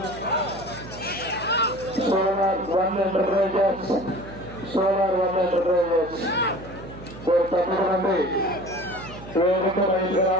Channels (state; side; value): noise; right; hum, 16 dB below the sound